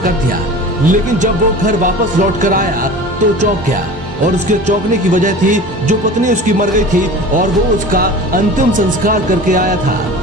दिया, लेकिन जब वो घर वापस लौट कर आया तो चौंक गया और उसके चौंकने की वजह थी जो पत्नी उसकी मर गई थी और वो उसका अंतिम संस्कार करके आया था,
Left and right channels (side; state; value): both; normal; correlation 0.37